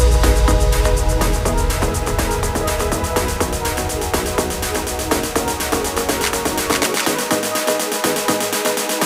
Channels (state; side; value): identical; both; correlation 1.00